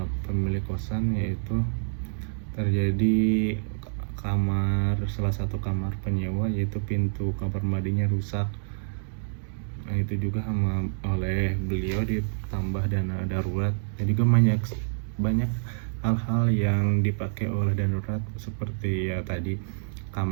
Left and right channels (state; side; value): silent; left; 60 dB below the other